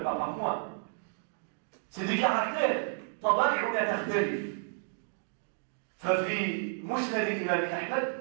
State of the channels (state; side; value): silent; left; digital silence